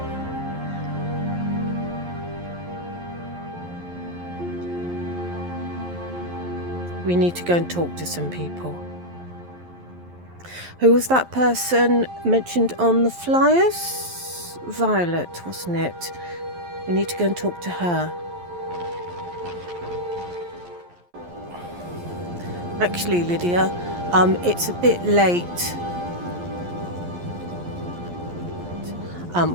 We need to go and talk to some people. Who was that person mentioned on the flyers? Violet, wasn't it? We need to go and talk to her. Actually, Lydia, it's a bit late.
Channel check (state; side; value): late; left; 11 ms